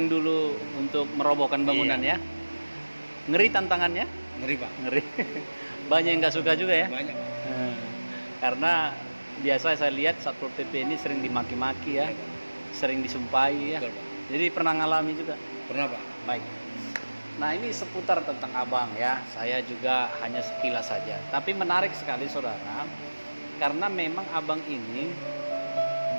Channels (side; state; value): both; inverted; correlation -1.00